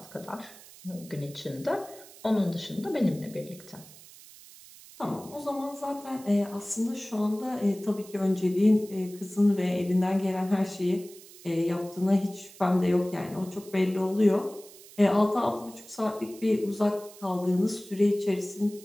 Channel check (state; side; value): noise; right; hiss, 20 dB below the sound